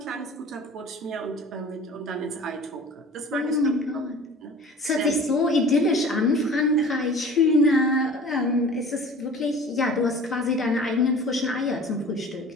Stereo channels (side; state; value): both; normal; correlation 0.43